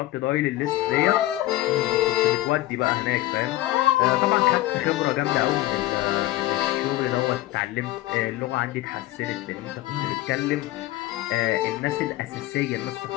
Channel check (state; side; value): quieter; right; 16.5 dB